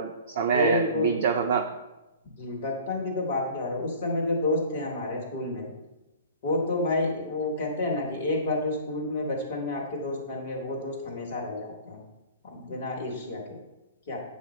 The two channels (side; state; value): both; inverted; correlation -0.44